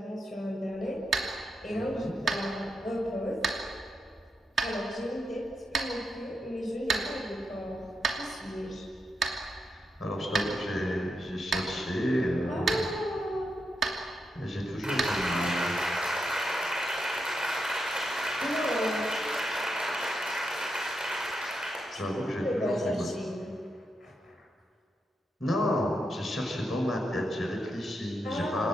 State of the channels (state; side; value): normal; both; correlation 0.85